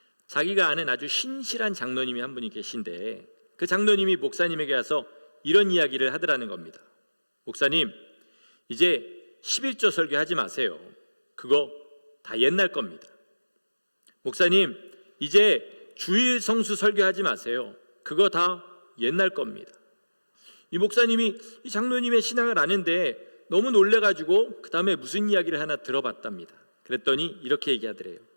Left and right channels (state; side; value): inverted; both; correlation -1.00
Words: 자기가 아는 아주 신실한 장로님이 한 분이 계신데, 그 장로님이 목사님에게 와서 이런 이야기를 하더라는 겁니다. 목사님, 이제 11조 설교하지 마세요. 그거 다 옛날 겁니다. 목사님, 이제 주일 성수 설교하지 마세요. 그거 다 옛날 겁니다. 이 목사님이 이 장로님의 신앙을 아는데 너무 놀래가지고 그 다음에 무슨 이야기를 하나 들어봤답니다. 그랬더니 이렇게 얘기하더래요.